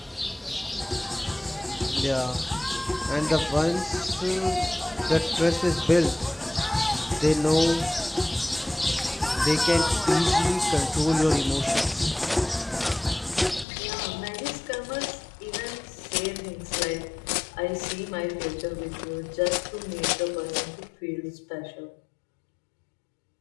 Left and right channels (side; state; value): right; drops out; at 13.7 s